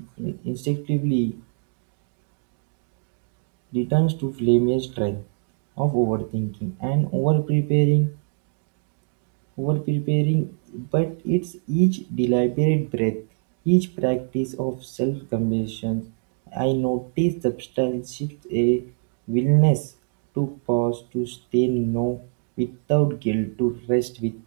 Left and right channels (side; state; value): left; silent; digital silence